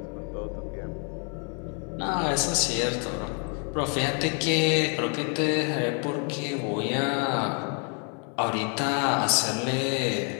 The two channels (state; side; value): quieter; right; 39.5 dB